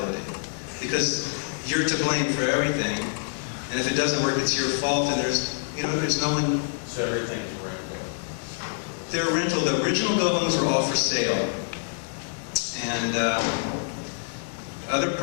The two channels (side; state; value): right; silent; digital silence